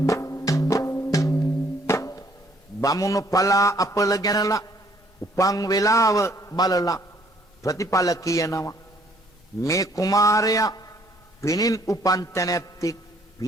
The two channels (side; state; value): both; normal; correlation 0.63